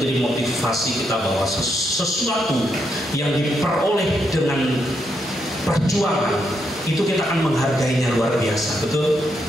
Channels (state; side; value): normal; both; correlation 0.79